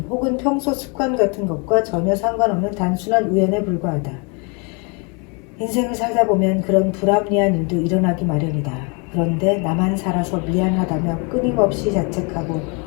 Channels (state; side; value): quieter; right; 33.5 dB